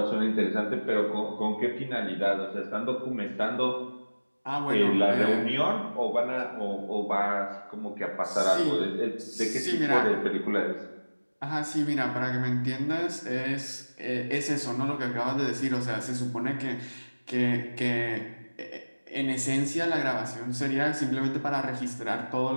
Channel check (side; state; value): both; inverted; correlation -1.00